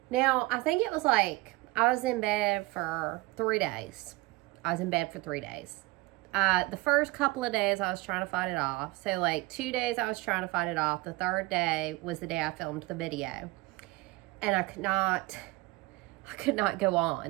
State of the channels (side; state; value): left; quieter; 22.2 dB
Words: Now, I think it was I was in bed for 3 days. The first couple of days I was trying to fight it off. So 2 days I was trying to fight it off. The third day was the day I filmed the video. And I could not go